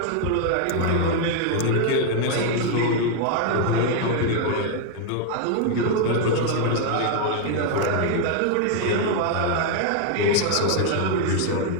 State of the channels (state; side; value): different; both; correlation 0.01